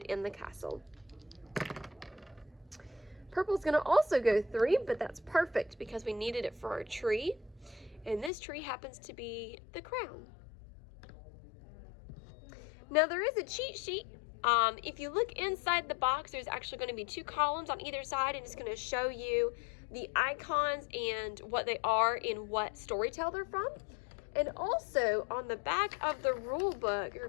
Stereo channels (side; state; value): right; drops out; at 8.3 s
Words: in the castle. Purple's going to also go 3, but that's perfect because we needed it for our tree. And this tree happens to be the crown. Now there is a cheat sheet. If you look inside the box, there's actually going to be 2 columns on either side, and it's going to show you the icons and what they are and what storytale they're from. And also on the back of the rule book, you're